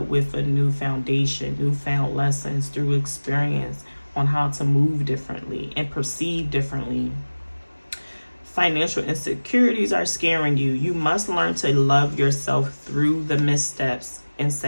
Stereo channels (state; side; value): inverted; both; correlation -1.00